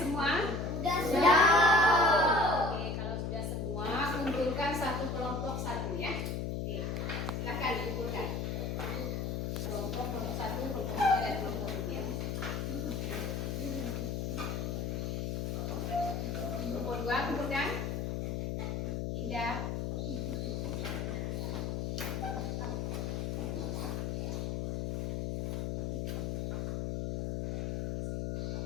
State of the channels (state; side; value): noise; left; hum, 1 dB below the sound